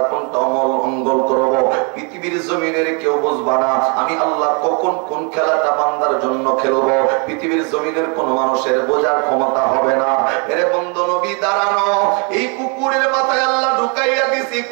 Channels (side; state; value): left; quieter; 35.5 dB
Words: কন্ট্রোল করব। পৃথিবীর জমিনের কেউ বুঝবা না আমি আল্লাহ কখন কোন খেলাটা বান্দার জন্য খেলবো। পৃথিবীর জমিনের কোন মানুষের বোঝার ক্ষমতা হবে না। এরে বন্ধু নবী দাঁড়ানো, এই কুকুরের মাথায় আল্লাহ ঢুকাইয়া দিছি,